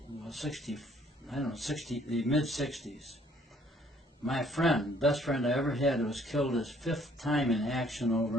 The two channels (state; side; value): normal; both; correlation 0.62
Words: the mid-60s. My friend, best friend I ever had, who was killed his 5th time in action